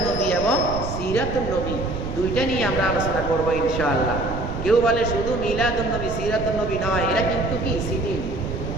নবী এবং সিরাতুন নবী দুইটা নিয়ে আমরা আলোচনা করব ইনশাআল্লাহ। কেউ বলে শুধু মিলাদুন নবী সিরাতুন নবী নয়, এরা কিন্তু কি সিটি,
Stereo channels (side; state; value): right; noise; rumble, 6 dB below the sound